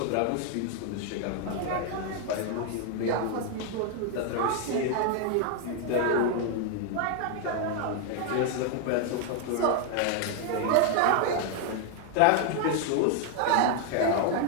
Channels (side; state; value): both; different; correlation 0.01